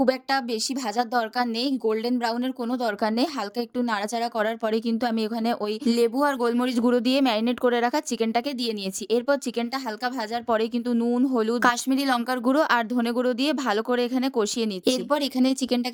একটা বেশি ভাজার দরকার নেই, গোল্ডেন ব্রাউনের কোনো দরকার নেই। হালকা একটু নাড়াচাড়া করার পরে কিন্তু আমি এখানে ওই লেবু আর গোলমরিচ গুঁড়ো দিয়ে ম্যারিনেট করে রাখা চিকেনটাকে দিয়ে নিয়েছি। এরপর চিকেনটা হালকা ভাজার পরে কিন্তু নুন, হলুদ, কাশ্মীরি লঙ্কার গুঁড়ো আর ধনে গুঁড়ো দিয়ে ভালো করে এখানে কষিয়ে নিচ্ছি। এরপর এখানে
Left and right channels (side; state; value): both; identical; correlation 1.00